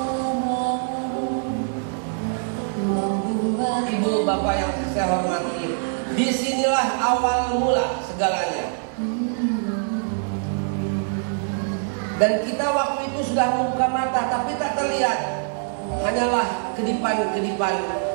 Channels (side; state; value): left; silent; digital silence